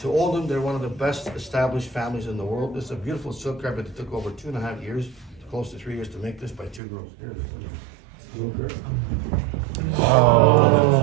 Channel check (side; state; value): left; drops out; at 6.8 s